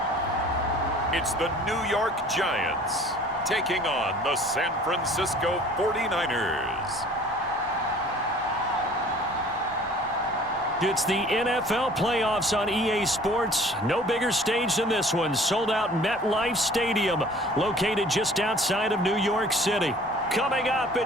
It's the New York Giants taking on the San Francisco 49ers. It's the NFL playoffs on EA Sports. No bigger stage than this one. Sold out MetLife Stadium, located just outside of New York City. Coming up,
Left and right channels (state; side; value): normal; both; correlation 0.50